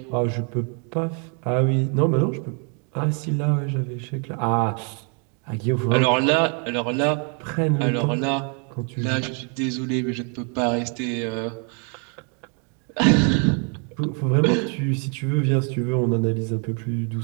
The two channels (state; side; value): quieter; left; 38.9 dB